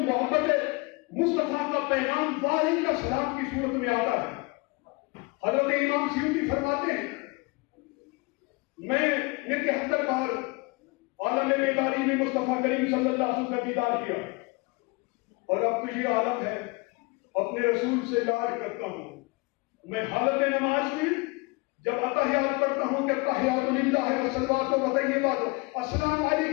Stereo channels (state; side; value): quieter; right; 26.8 dB